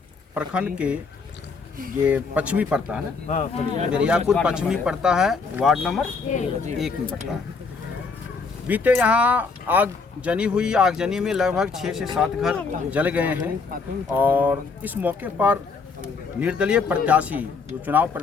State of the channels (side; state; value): right; quieter; 4.7 dB